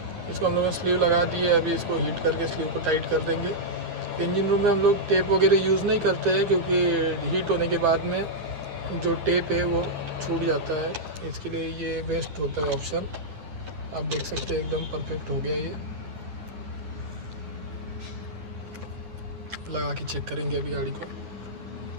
इसको हम लोगों ने स्लीव लगा दी है, अभी इसको हीट करके स्लीव को टाइट कर देंगे। इंजन रूम में हम लोग टेप वगैरह यूज़ नहीं करते हैं, क्योंकि हीट होने के बाद में जो टेप है वो छूट जाता है। इसके लिए ये बेस्ट होता है ऑप्शन। आप देख सकते हैं एकदम परफेक्ट हो गया। ये लगा के चेक करेंगे अभी गाड़ी को।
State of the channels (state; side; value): late; left; 10 ms